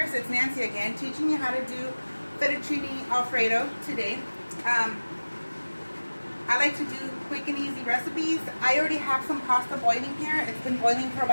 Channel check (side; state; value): both; inverted; correlation -1.00